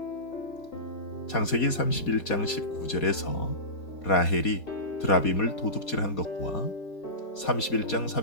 창세기 31장 19절에서 라헬이 드라빔을 도둑질한 것과 31장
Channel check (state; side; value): late; right; 4.2 ms